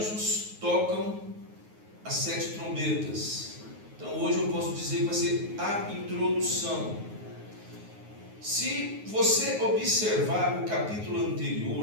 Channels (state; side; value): late; left; 9.5 ms